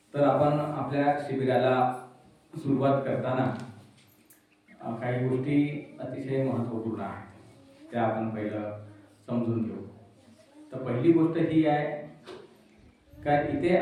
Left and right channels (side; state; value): both; identical; correlation 1.00